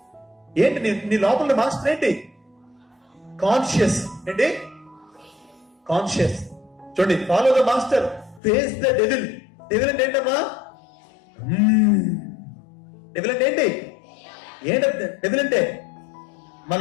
ఏంటి నీ లోపల మాస్టర్ ఏంటి? కాన్షియస్. ఏంటి కాన్షియస్? చూడండి, follow the master, face the devil. Devil అంటే ఏంటమ్మా? డెవిల్ అంటే ఏంటి? ఏంటంటే డెవిల్ అంటే మన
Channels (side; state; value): right; drops out; at 8.4 s